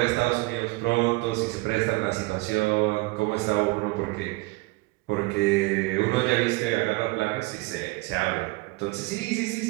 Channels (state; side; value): quieter; left; 23.5 dB